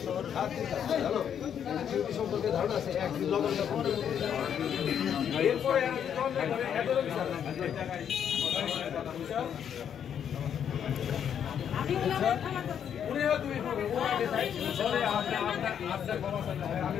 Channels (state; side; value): quieter; right; 8.6 dB